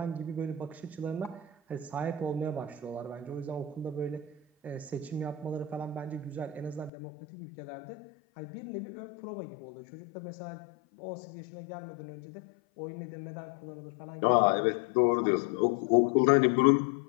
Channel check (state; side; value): drops out; right; at 6.9 s